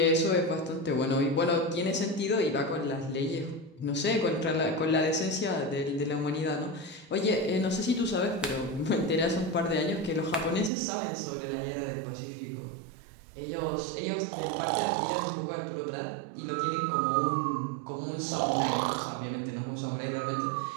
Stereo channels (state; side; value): drops out; left; at 10.7 s